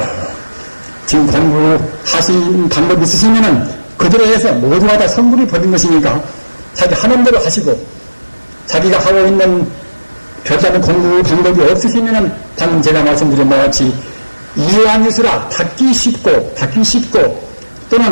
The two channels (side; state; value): both; inverted; correlation -1.00